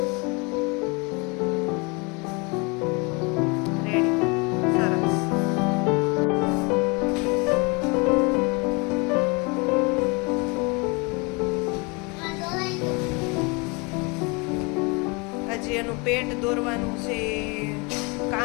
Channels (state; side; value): quieter; right; 29.5 dB